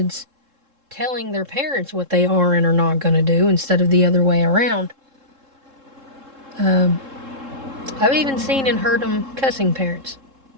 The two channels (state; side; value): late; left; 3.7 ms